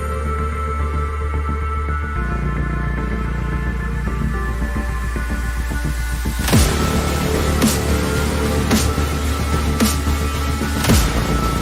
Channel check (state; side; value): identical; both; correlation 1.00